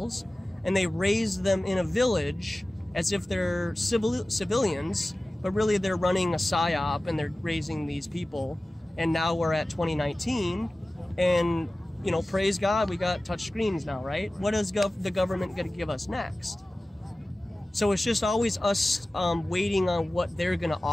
and they raised them in a village as if they're civilians, but really they're running a psyop and they're raising these people. And now we're at 2019, and, you know, praise God, we got touch screens now, right? What is the government going to give us next? So it's just always us waiting on what they're going to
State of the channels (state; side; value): normal; both; correlation 0.97